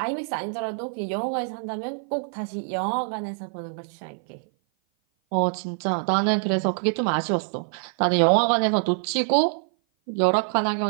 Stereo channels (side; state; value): left; silent; 56 dB below the other